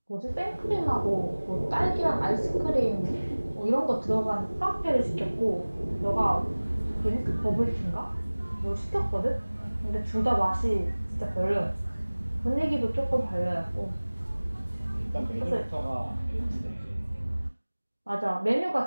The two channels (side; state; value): both; inverted; correlation -1.00